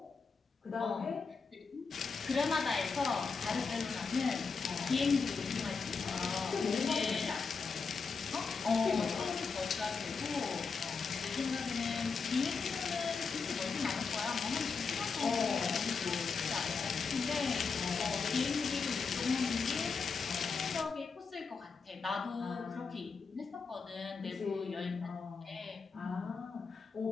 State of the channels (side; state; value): right; quieter; 5.0 dB